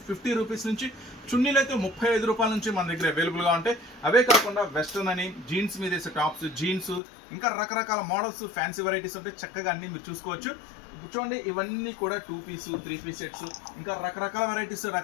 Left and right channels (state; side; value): drops out; right; at 7.0 s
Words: 50 రూపీస్ నుంచి, చున్నీలు అయితే 35 రూపాయల నుంచి మన దగ్గర అవైలబుల్గా ఉంటాయి. అవే కాకుండా వెస్ట్రన్ అని జీన్స్ మీద వేసే టాప్స్, జీన్స్, ఇంకా రకరకాల మోడల్స్ ఫ్యాన్సీ వెరైటీస్ ఉంటాయి, చక్కగా అన్ని మీరు చూసుకోవచ్చు. చూడండి ఇవన్నీ కూడా 2 పీస్ 3 పీస్ సెట్స్, ఇంకా రకరకాల వెరైటీస్